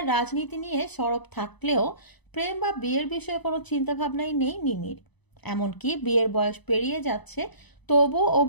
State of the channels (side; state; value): right; late; 1.0 ms